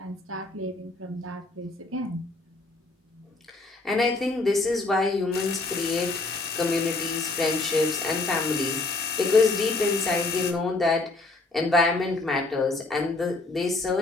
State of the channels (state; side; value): quieter; right; 3.3 dB